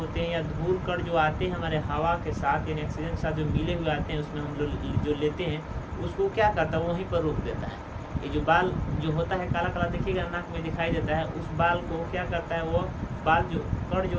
हैं या धूल कण जो आते हैं हमारे हवा के साथ यानी ऑक्सीजन के साथ जो मिले हुए आते हैं, उसमें हम लोग जो लेते हैं उसको क्या करता है? वहीं पर रोक देता है। ये जो बाल जो होता है काला काला देखिएगा नाक में दिखाई देता है, उस बाल को क्या करता है? वो बाल जो कण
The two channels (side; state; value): both; identical; correlation 1.00